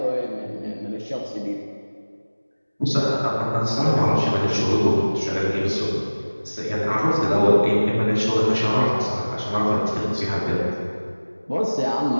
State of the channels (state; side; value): inverted; both; correlation -1.00